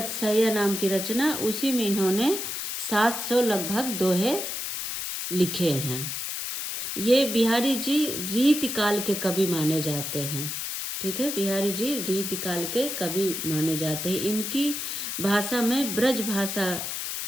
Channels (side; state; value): left; noise; hiss, 4 dB below the sound